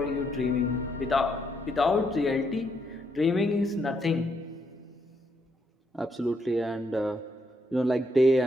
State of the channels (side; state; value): both; normal; correlation 0.76